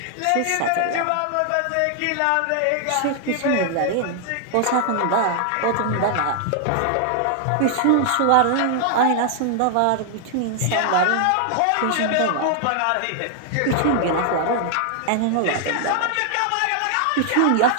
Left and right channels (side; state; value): both; different; correlation 0.00